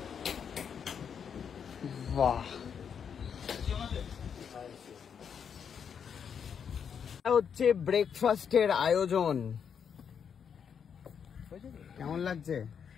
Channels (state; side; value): quieter; right; 7.3 dB